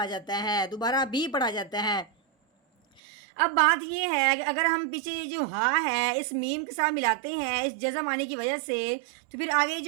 जाता है, दोबारा भी पढ़ा जाता है। अब बात ये है कि अगर हम पीछे जो हा है इस मीम के साथ मिलाते हैं इस जज़म आने की वजह से, तो फिर आगे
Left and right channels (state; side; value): drops out; left; at 3.0 s